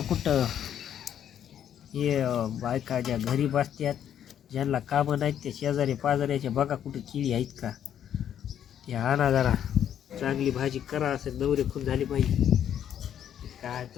कुठं. हे बायका ज्या घरी बसतात, ज्यांना कामं नाहीत, ते शेजारी पाजाऱ्याच्या बघा कुठं केळी आहेत का, ते आणा जरा. चांगली भाजी करा. असं नवरे खून झाली पाहिजे. काय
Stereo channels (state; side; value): quieter; right; 9.8 dB